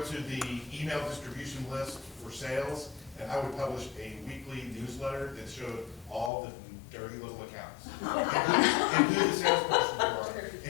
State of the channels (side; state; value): right; drops out; at 6.3 s